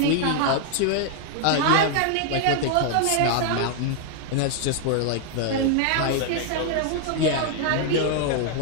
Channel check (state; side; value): different; both; correlation 0.00